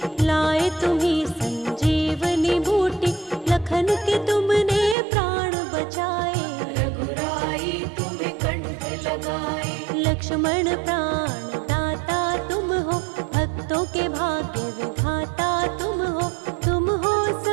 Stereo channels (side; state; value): left; drops out; at 5.0 s